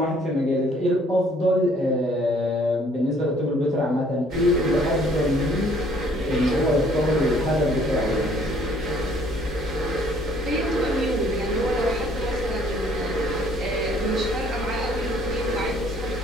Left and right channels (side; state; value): both; normal; correlation 0.60